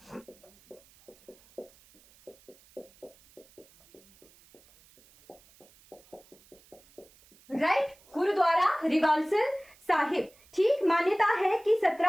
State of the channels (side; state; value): right; noise; hiss, 28 dB below the sound